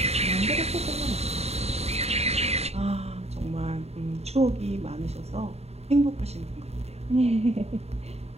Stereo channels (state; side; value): late; left; 0.30 ms